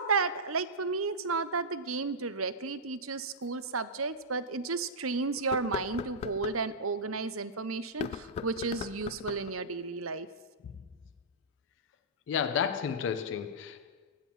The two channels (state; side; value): normal; both; correlation -0.14